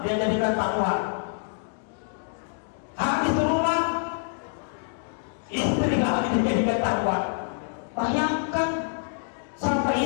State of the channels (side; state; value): right; silent; digital silence